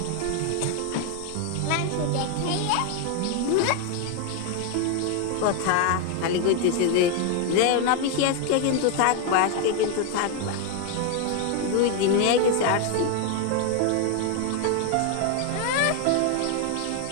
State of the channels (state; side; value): different; both; correlation 0.01